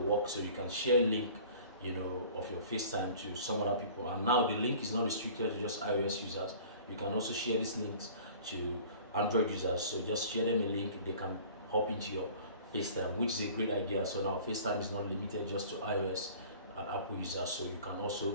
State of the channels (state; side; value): inverted; both; correlation -0.46